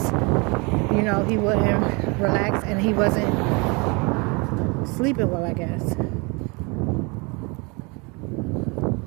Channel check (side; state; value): left; quieter; 29.5 dB